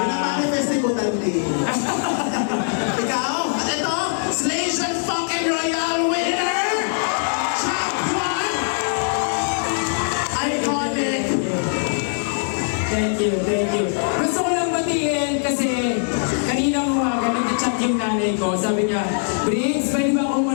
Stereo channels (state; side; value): silent; right; digital silence